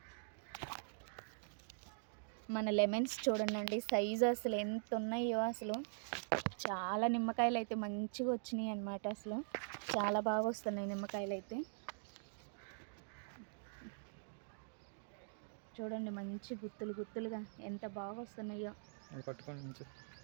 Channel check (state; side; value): silent; left; digital silence